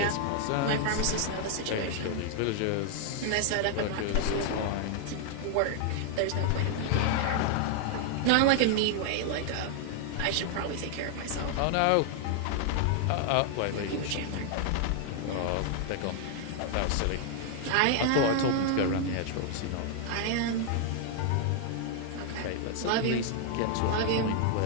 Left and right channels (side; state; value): both; different; correlation 0.00